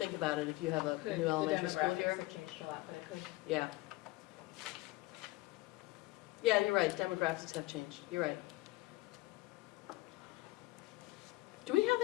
about it, if you have a Could, new the elementary school demographics here. have changed a lot, but it could. Yeah. Yeah, you're right, demographics have changed, you're right. Do we have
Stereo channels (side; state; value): right; quieter; 19.9 dB